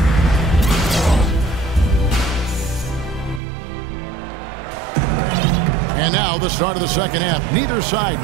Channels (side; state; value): left; drops out; at 3.4 s